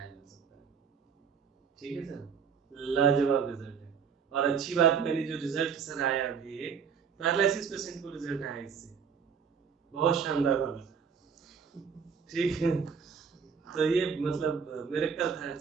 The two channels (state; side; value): quieter; left; 6.5 dB